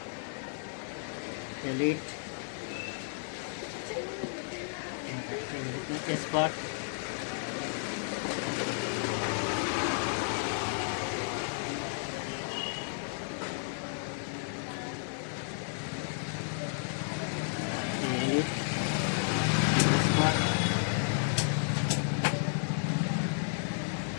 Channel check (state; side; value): silent; right; 56 dB below the other